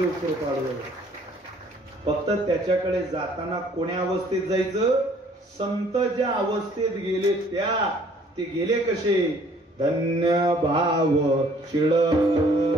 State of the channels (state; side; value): normal; both; correlation 0.58